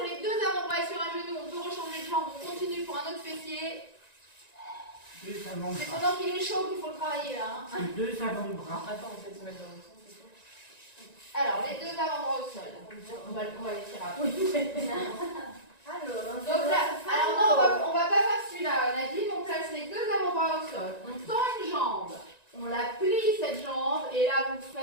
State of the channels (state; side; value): late; right; 1.9 ms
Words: les deux avant-bras et sur un genou, on peut rechanger de jambe, on continue pour un autre fessier. Deux C'est avant-bras. pendant qu'il est chaud qu'il faut le travailler là. Hein. Deux avant-bras. Attends, on fait se mettre dans le sens, c'est tout. Alors, les deux avant-bras au sol. On va les tirer après. Donc là, alors non, on va pas faire celui-là, Nadine, on place les deux avant-bras au sol, on tend une jambe, on la plie cette jambe, et là vous